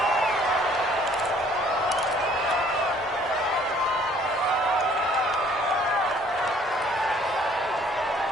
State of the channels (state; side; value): normal; both; correlation 0.58